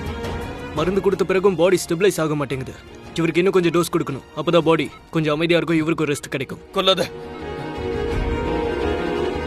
மருந்து கொடுத்த பிறகும் பாடி ஸ்டெபிலைஸ் ஆக மாட்டேங்குது. இவருக்கு இன்னும் கொஞ்சம் டோஸ் கொடுக்கணும். அப்பதான் பாடி கொஞ்சம் அமைதியா இருக்கும், இவருக்கு ரெஸ்ட் கிடைக்கும். கொல்லாத,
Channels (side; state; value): both; identical; correlation 1.00